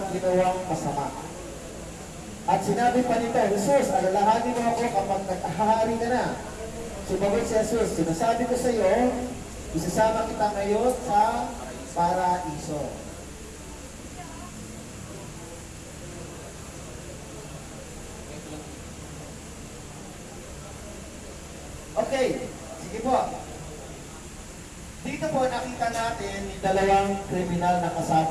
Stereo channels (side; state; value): both; identical; correlation 1.00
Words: ginawang masama. At sinabi pa nito, Jesus, alalahanin mo ako kapag naghahari ka na. Sumagot si Jesus, sinasabi ko sa iyo, isasama kita ngayon sa paraiso. Okay, sige po. Dito po nakita natin yung dalawang kriminal na